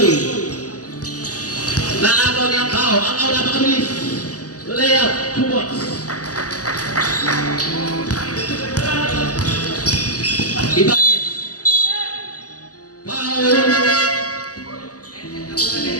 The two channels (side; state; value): right; late; 0.67 ms